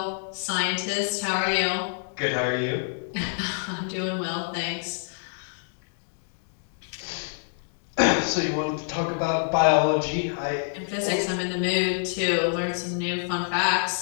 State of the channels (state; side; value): silent; right; digital silence